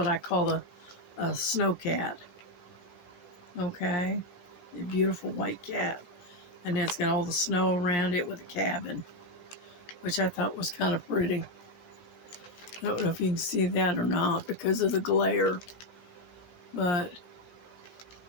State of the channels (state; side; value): late; right; 17 ms